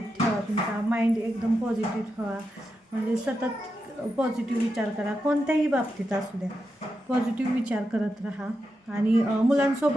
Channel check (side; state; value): both; normal; correlation 0.87